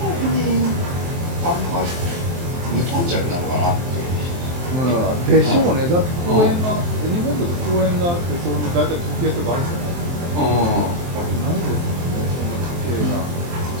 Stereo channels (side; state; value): left; late; 23 ms